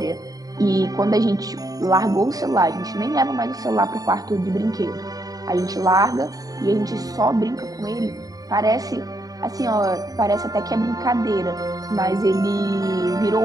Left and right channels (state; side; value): late; left; 0.18 ms